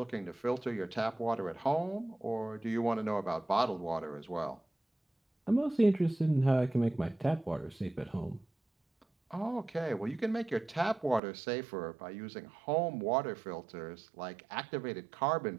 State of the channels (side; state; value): left; drops out; at 11.2 s